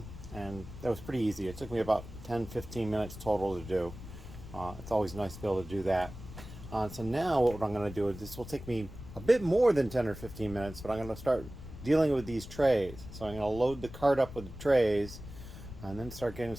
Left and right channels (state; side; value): noise; left; rumble, 13 dB below the sound